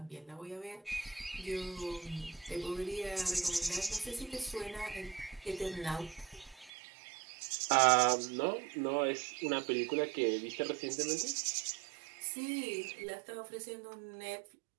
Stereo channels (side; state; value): left; drops out; at 6.7 s